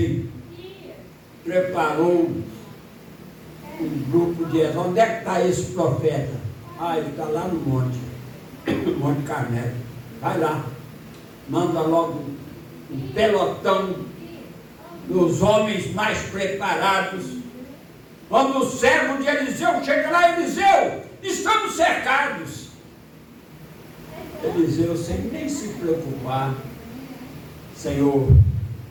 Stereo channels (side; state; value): both; identical; correlation 1.00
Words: preparou um grupo de... Onde é que está esse profeta? Ah, ele está lá no monte. No Monte Carmelo. Vai lá. Manda logo um pelotão dos homens mais preparados. Quando o servo de Eliseu chega lá, Eliseu, estamos cercados. Eliseu, sem nem se preocupar: Senhor,